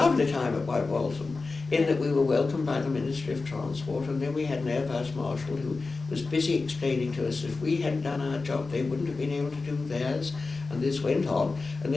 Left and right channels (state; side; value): quieter; right; 3.9 dB